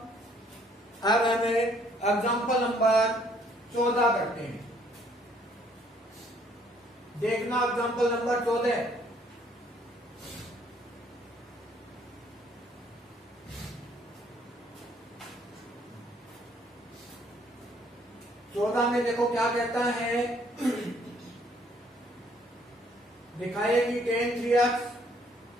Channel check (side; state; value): both; normal; correlation 0.64